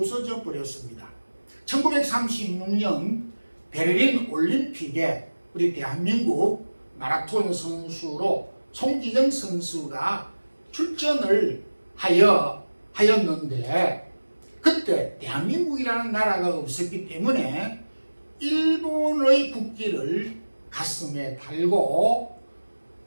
버렸습니다. 1936년 베를린 올림픽에 우리 대한민국 마라톤 선수로 송기정 선수가 출전을 하였는데, 그때 대한민국이라는 나라가 없었기 때문에 일본의 국기를 가슴에 달고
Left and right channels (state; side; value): inverted; both; correlation -1.00